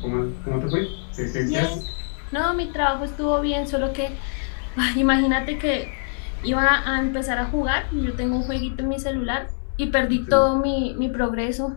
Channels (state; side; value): silent; right; 62 dB below the other